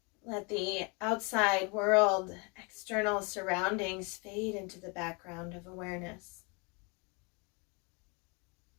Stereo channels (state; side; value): quieter; right; 31.6 dB